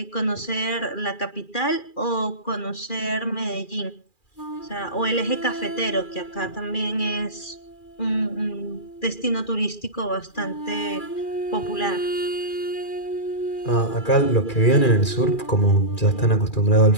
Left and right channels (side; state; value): right; late; 2.4 ms